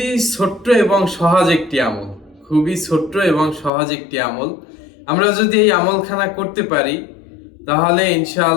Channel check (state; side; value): drops out; right; at 3.7 s